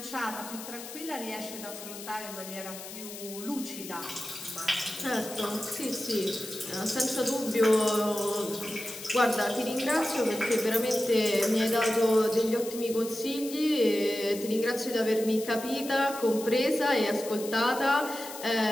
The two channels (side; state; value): left; noise; hiss, 12 dB below the sound